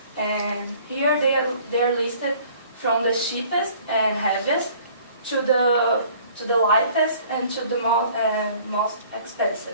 And here they are listed from the cheapest and heaviest to the lightest and to the most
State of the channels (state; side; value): inverted; both; correlation -0.54